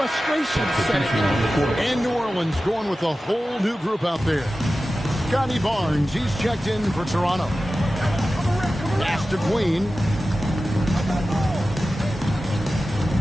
setting in. And New Orleans going with a whole new group out there. Scotty Barnes, he's checked in for Toronto. Pass to Queen.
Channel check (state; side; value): normal; both; correlation 0.94